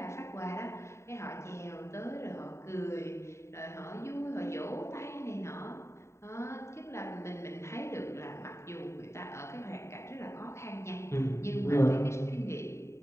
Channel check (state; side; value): late; right; 0.13 ms